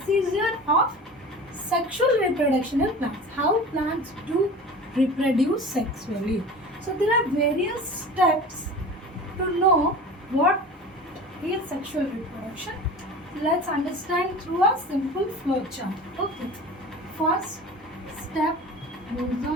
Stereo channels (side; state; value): both; normal; correlation 0.36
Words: of sexual reproduction in plants. How plants do reproduce sexually. So there are various steps to know what is sexual reproduction. Let's understand through a simple flow chart. Okay. First step goes